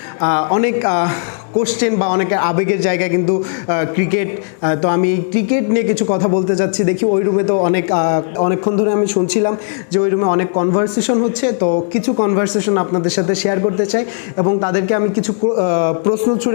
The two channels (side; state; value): right; silent; digital silence